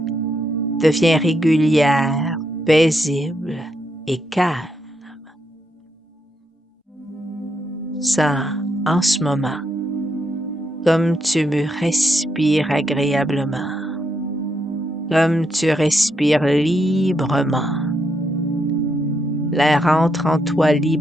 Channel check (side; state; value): both; normal; correlation 0.79